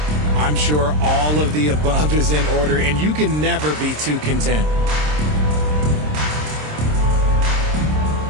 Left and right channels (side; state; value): left; late; 26 ms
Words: I'm sure all of the above is in order, and you can never be too content.